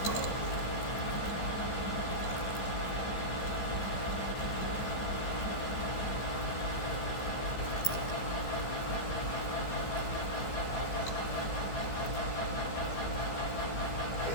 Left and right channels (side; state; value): right; late; 15 ms